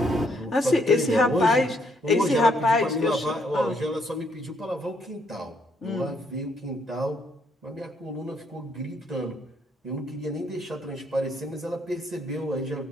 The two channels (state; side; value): normal; both; correlation 0.71